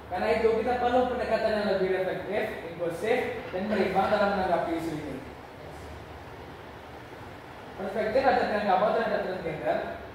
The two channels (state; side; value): identical; both; correlation 1.00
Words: Karena itu kita perlu pendekatan yang lebih reflektif, inklusif, dan berimbang dalam menanggapi isu ini. Perspektif adat Minangkabau terhadap transgender.